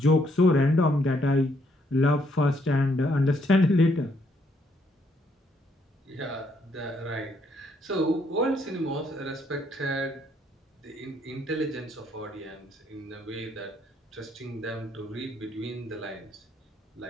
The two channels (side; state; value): both; normal; correlation 0.71